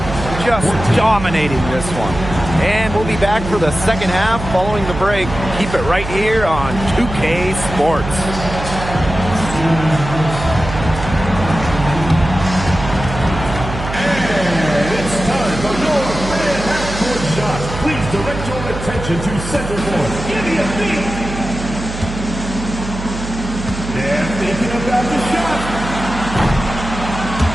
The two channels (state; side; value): noise; right; hum, 8 dB below the sound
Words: just dominating this one. And we'll be back for the second half following the break. Keep it right here on 2K Sports. Please direct your attention to center court. Give me a beat. They're thinking about the shot.